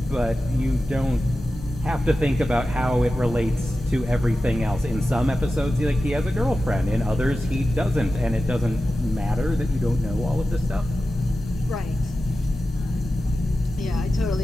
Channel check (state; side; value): normal; both; correlation 0.93